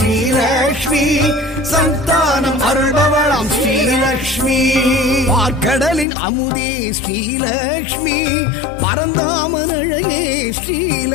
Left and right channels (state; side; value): drops out; right; at 6.1 s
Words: சந்தானம் அருள்பவளாம் ஸ்ரீலக்ஷ்மி பார்க்கடலின் அமுதே ஸ்ரீலக்ஷ்மி பரந்தாமன் அழகே